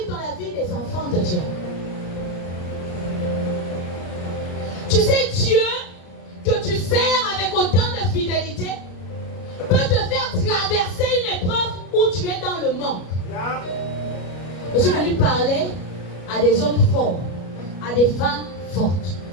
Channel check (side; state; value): right; late; 33 ms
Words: dans la vie des enfants de Dieu. Tu sais, Dieu, que tu sers avec autant de fidélité, peut te faire traverser une épreuve où tu es dans le manque. Je suis venu parler à des hommes forts, à des femmes fortes.